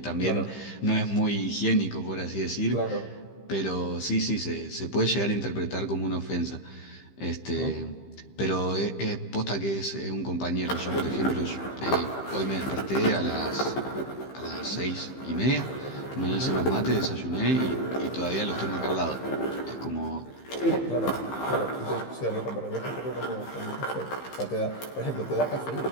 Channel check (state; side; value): late; right; 15 ms